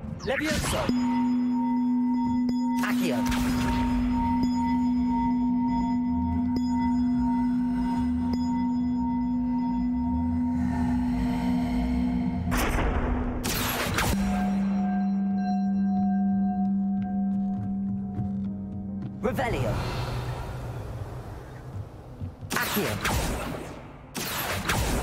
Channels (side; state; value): both; identical; correlation 1.00